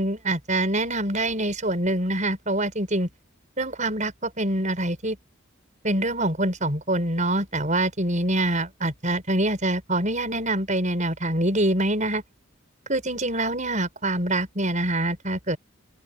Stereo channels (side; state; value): both; normal; correlation 0.39